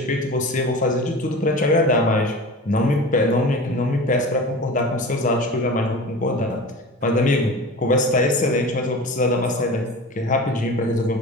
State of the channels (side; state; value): both; normal; correlation 0.34